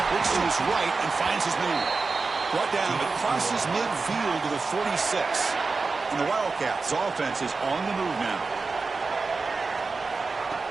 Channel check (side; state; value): left; quieter; 4.2 dB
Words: looks to his right and finds his man. Brought down, but crosses midfield to the 46. And the Wildcats' offense is on the move now.